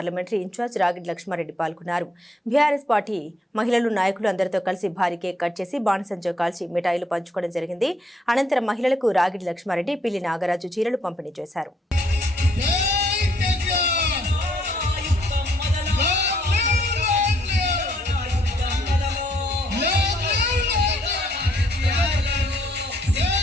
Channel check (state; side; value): normal; both; correlation 0.70